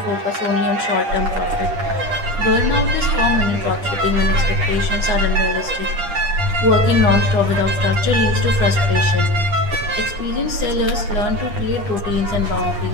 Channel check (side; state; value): left; late; 10 ms